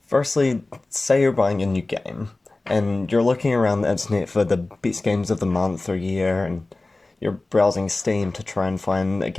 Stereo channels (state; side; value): quieter; right; 3.1 dB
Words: firstly, say you're buying a new game, and you're looking around the internet for the best games of the month or year, and you're browsing Steam to try and find a